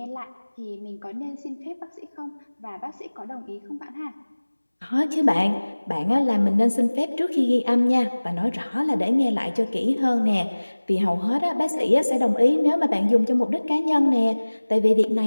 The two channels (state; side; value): inverted; both; correlation -1.00